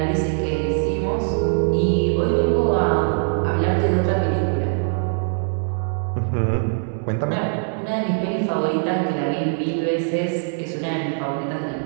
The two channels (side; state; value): left; silent; 64 dB below the other